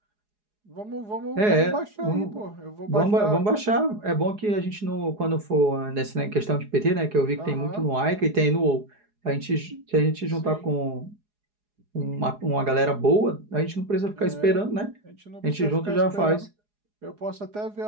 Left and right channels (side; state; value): left; late; 4.8 ms